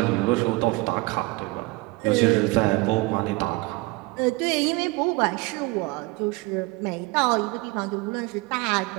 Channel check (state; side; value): quieter; left; 23.5 dB